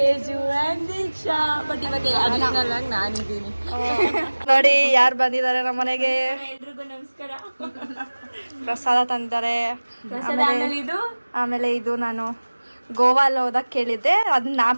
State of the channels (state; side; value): inverted; both; correlation -1.00